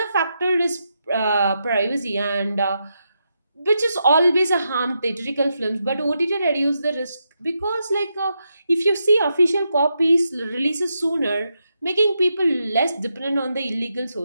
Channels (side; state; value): both; inverted; correlation -0.84